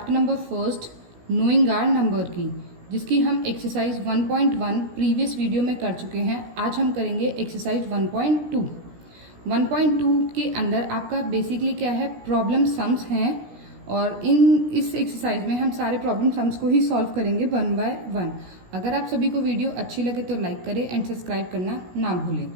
number first knowing our number की, जिसकी हम एक्सरसाइज 1.1 प्रीवियस वीडियो में कर चुके हैं। आज हम करेंगे एक्सरसाइज 1.2। 1.2 के अंदर आपका बेसिकली क्या है, प्रॉब्लम सम्स हैं और इस एक्सरसाइज में हम सारे प्रॉब्लम सम्स को ही सॉल्व करेंगे 1 बाय 1। अगर आप सभी को वीडियो अच्छी लगे तो लाइक करें एंड सब्सक्राइब करना ना भूलें।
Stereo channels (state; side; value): late; left; 17 ms